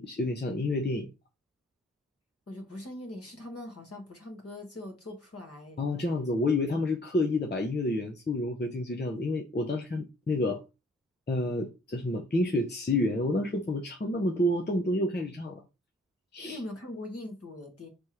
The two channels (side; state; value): both; normal; correlation 0.59